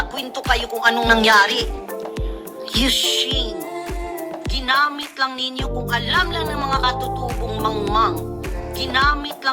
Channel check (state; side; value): identical; both; correlation 1.00